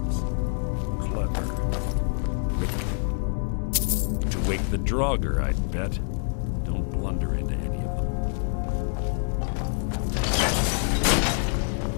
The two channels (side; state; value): right; silent; 61 dB below the other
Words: Clever. To wake the Draugr, I'd bet. Don't blunder into any of them.